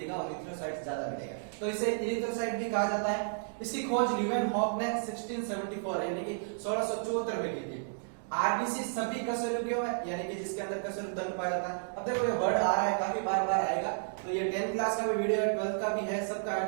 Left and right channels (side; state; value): left; silent; digital silence